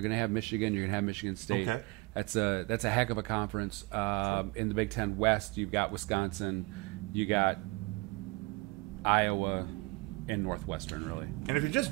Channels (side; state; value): left; quieter; 25.0 dB